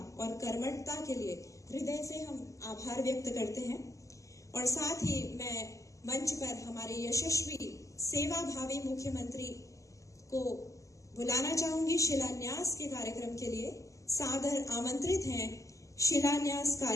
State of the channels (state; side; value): late; right; 0.15 ms